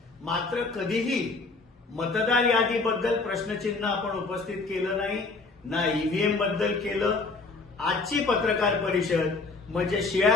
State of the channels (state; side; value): quieter; right; 3.8 dB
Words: मात्र कधीही मतदार यादीबद्दल प्रश्नचिन्ह आपण उपस्थित केलं नाही, ना ईव्हीएम बद्दल केलं. आजची पत्रकार परिषद म्हणजे शिळ्या